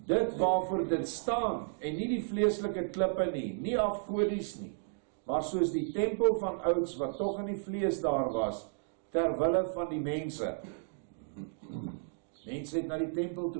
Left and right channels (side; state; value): left; silent; digital silence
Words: waarvoor dit staan, en nie die vleeslike klippe nie afgodies nie, maar soos die tempel van ouds, wat tog in die vlees daar was, terwille van die mense. Mense het na die tempel